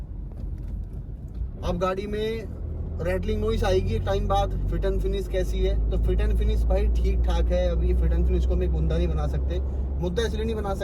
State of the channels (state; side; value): identical; both; correlation 1.00